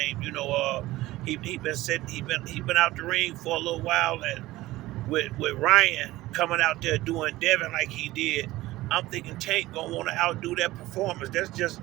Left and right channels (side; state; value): left; quieter; 17.6 dB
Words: He been out the ring for a little while, and with Ryan coming out there doing Devin like he did, I'm thinking Tank gonna want to outdo that performance. That's just